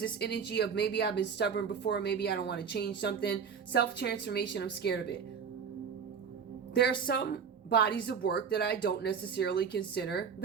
this energy of maybe I've been stubborn before, maybe I don't want to change something. Self-transformation, I'm scared of it. There are some bodies of work that I don't necessarily consider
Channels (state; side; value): quieter; left; 6.6 dB